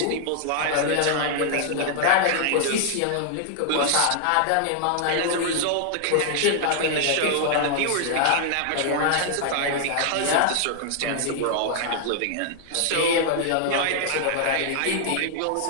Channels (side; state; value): both; different; correlation -0.01